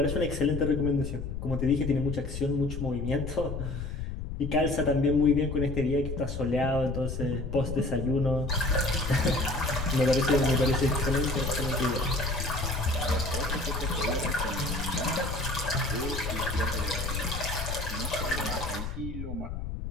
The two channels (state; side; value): noise; left; rumble, 5 dB below the sound